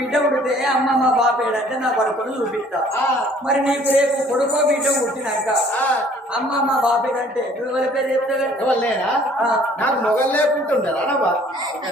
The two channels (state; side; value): normal; both; correlation 0.56